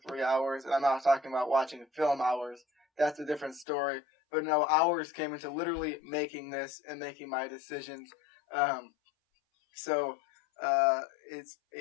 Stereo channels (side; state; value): right; drops out; at 3.7 s